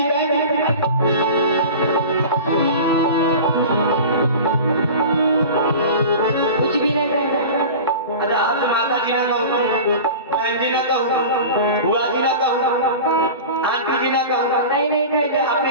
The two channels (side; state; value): both; inverted; correlation -0.35